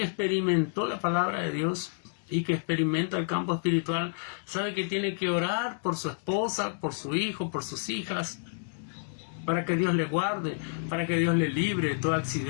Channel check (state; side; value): silent; right; digital silence